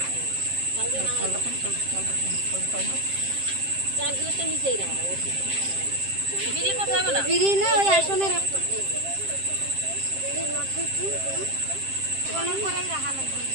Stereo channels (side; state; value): left; late; 7.6 ms